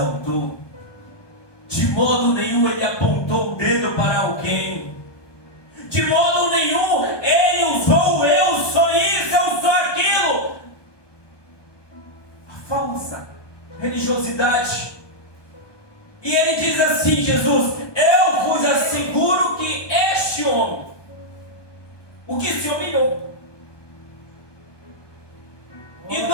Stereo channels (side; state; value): right; late; 1.2 ms